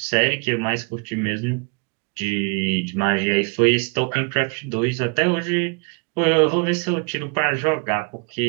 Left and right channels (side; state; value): left; quieter; 33.8 dB